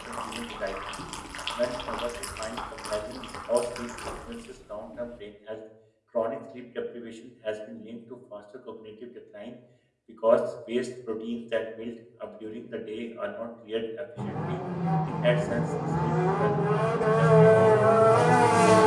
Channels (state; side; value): identical; both; correlation 1.00